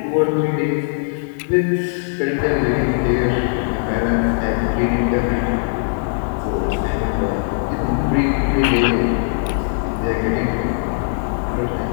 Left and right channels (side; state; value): right; silent; digital silence